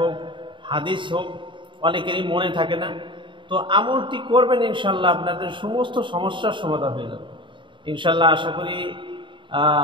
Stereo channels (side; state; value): left; late; 0.24 ms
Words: হাদিস হোক, অনেকেরই মনে থাকে না। তো আমলটি করবেন ইনশাল্লাহ, আপনাদের সমস্ত সমস্যার সমাধান হয়ে যাবে ইনশাল্লাহ। আশা করি